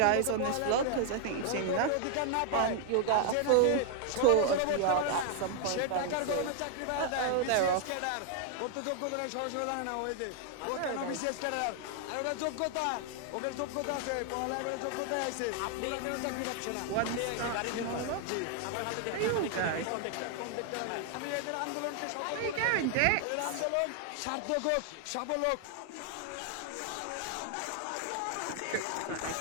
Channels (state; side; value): different; both; correlation 0.00